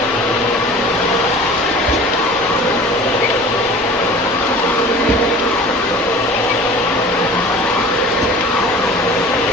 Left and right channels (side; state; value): both; normal; correlation 0.42